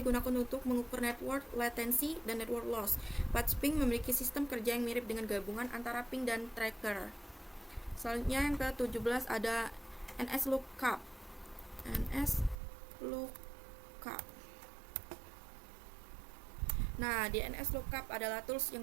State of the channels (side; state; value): left; drops out; at 12.6 s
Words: digunakan untuk mengukur network latency dan network loss. Patch ping memiliki sistem kerja yang mirip dengan gabungan antara ping dan tracker. Selanjutnya yang ke-17 ada NS lookup. Nah, DNS lookup adalah tools